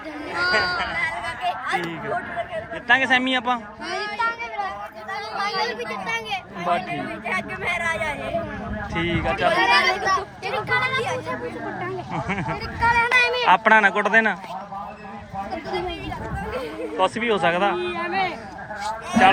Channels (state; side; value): identical; both; correlation 1.00